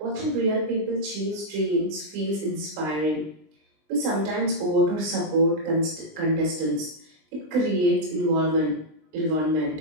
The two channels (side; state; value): left; late; 20 ms